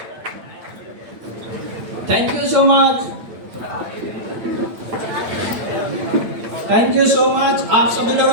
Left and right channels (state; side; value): late; left; 8.9 ms